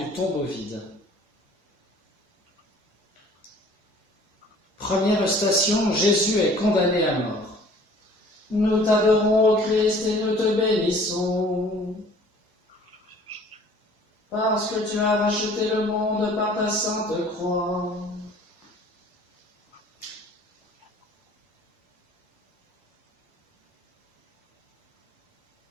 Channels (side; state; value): both; normal; correlation 0.51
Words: tombeau vide. Première station, Jésus est condamné à mort. Nous t'adorons, ô Christ, et nous te bénissons, parce que tu as racheté le monde par ta sainte croix.